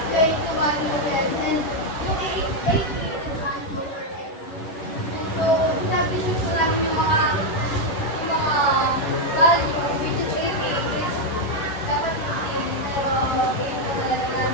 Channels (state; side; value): late; right; 11 ms